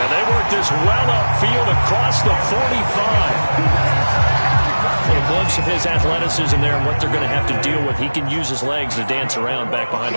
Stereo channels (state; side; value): inverted; both; correlation -1.00